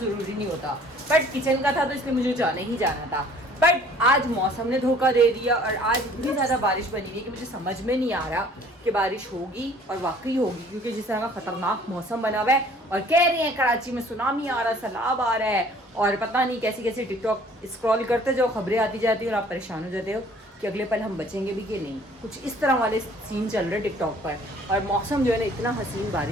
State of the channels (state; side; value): normal; both; correlation 0.54